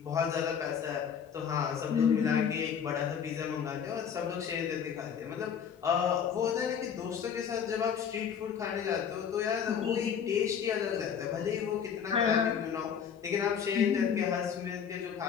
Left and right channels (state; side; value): quieter; right; 7.6 dB